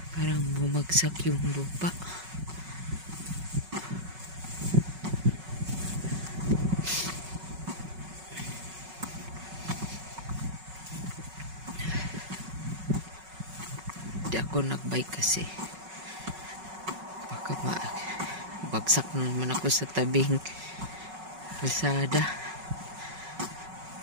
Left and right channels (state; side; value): late; left; 5.4 ms